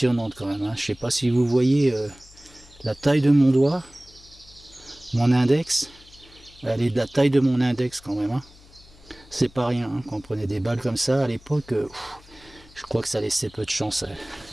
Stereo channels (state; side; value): noise; left; hum, 25 dB below the sound